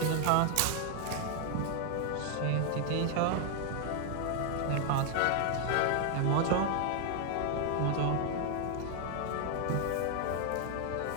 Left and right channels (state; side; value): different; both; correlation 0.00